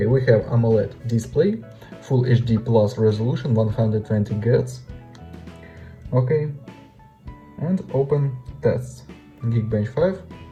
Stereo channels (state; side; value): identical; both; correlation 1.00